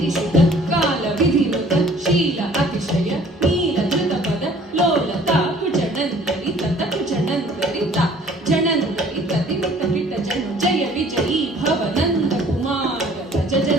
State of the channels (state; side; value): normal; both; correlation 0.54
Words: ಕಾಲ ವಿಧಿನುತ ಶೀಲ ಅತಿಶಯ ನೀಲ ಧೃತ ಪದ ಲೋಲ ತಾಕು ಜಣಂತರಿ ತತಕು ಜಣಂತರಿ ತಾ ಜಣಂತರಿ ತದಿಮಿತ ಕಿಟ ಜನು ಜಯ ವಿಜಯೀ ಭವ ನಂದ ಕುಮಾರ ಭಜ